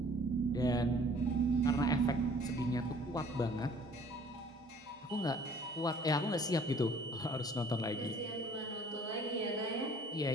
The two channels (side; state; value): both; normal; correlation 0.54